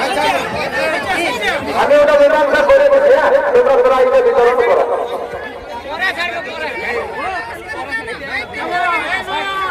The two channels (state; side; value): identical; both; correlation 1.00